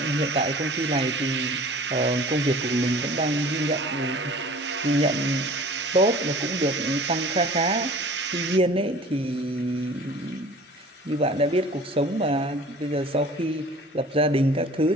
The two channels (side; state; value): both; normal; correlation 0.45